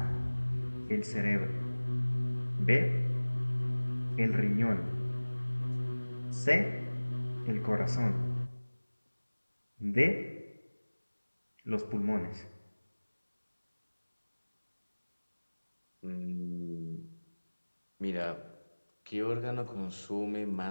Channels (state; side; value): inverted; both; correlation -1.00